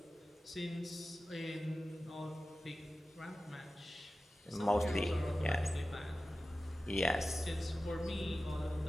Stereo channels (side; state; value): both; normal; correlation 0.95